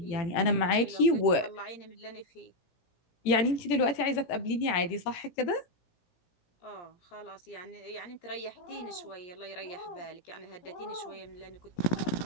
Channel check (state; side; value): late; right; 18 ms